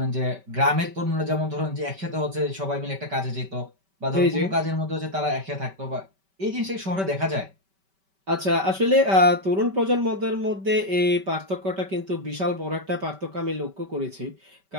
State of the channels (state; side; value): late; left; 5.2 ms